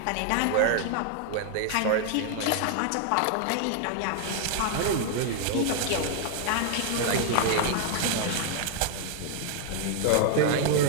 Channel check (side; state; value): both; different; correlation 0.00